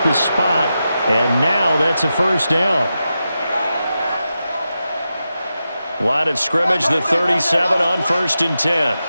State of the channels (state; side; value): inverted; both; correlation -0.90